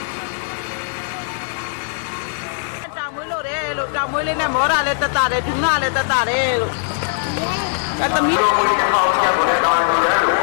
တောင်မွေးလေးနဲ့မောတာလည်းတက်တာတယ်ဒူနာလည်းတက်တာတယ်လို့အဲသမီးတို့ဒီအောက်ချက်ကိုလည်းတောင်းနေတယ်လို့အ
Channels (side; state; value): right; silent; 66 dB below the other